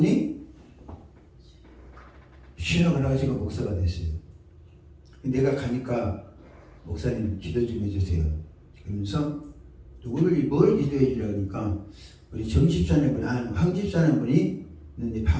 신학을 하시고 목사가 됐어요. 내가 가니까 목사님 기도 좀 해주세요. 그러면서 뭘 기도해 주려고 하니까 우리 정집사님 분이 황 집사님 분이 있는데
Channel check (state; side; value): identical; both; correlation 1.00